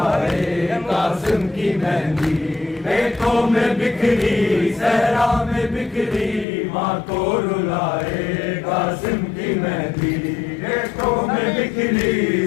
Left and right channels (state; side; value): drops out; right; at 6.5 s